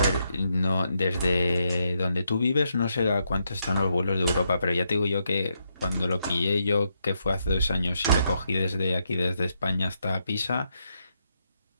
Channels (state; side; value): inverted; both; correlation -0.79